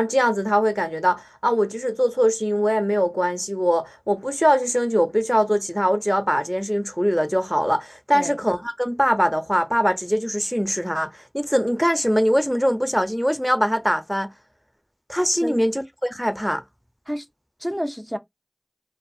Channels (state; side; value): identical; both; correlation 1.00